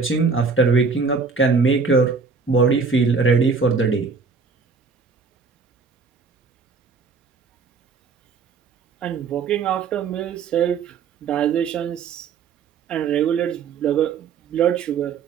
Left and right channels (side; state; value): left; quieter; 5.1 dB